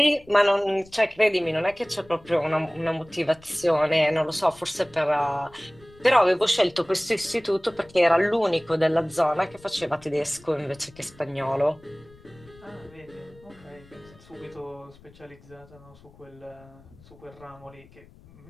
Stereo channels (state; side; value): noise; left; rumble, 24 dB below the sound